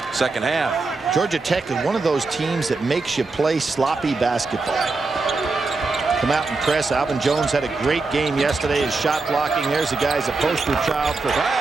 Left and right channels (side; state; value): left; quieter; 3.8 dB